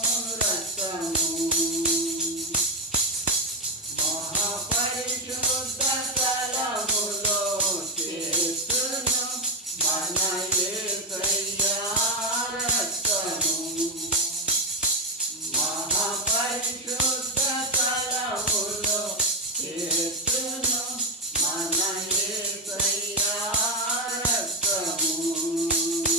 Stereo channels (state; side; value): normal; both; correlation 0.07